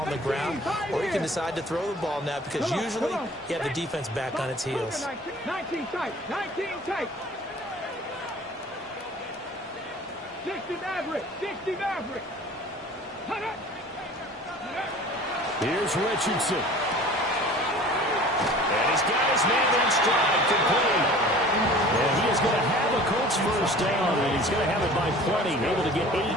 on the ground, or you can decide to throw the ball now because usually you have the defense back on its heels. 19 tight, 19 tight. 60 Maverick, 60 Maverick. Here's Richardson. And he's got his man in stride, complete. And he is going to have a Colts first down, and he's going to have it by plenty. Able to get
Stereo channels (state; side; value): normal; both; correlation 0.45